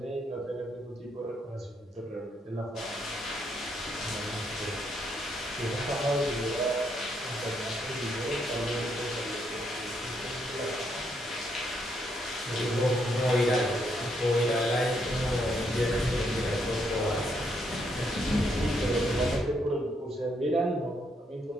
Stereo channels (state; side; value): normal; both; correlation 0.75